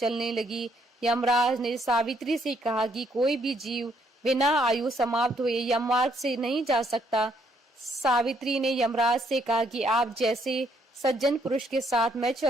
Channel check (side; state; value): both; normal; correlation 0.70